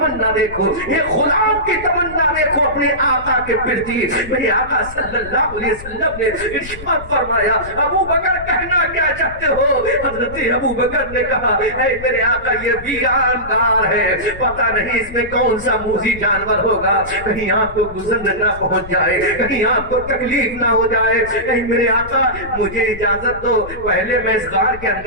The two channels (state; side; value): noise; left; rumble, 14 dB below the sound